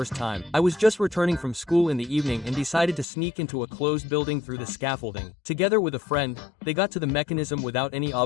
time. I was just returning from school in the evening and decided to sneak into a closed building through the scaffolding. Together with a friend, they got to the mechanism without any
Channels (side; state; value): right; drops out; at 3.1 s